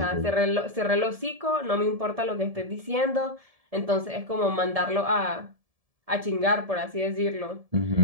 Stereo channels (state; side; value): late; left; 1.7 ms